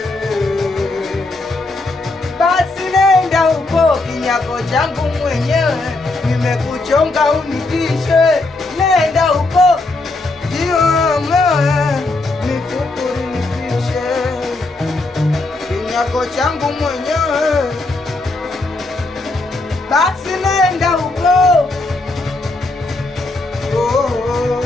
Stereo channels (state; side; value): quieter; right; 3.1 dB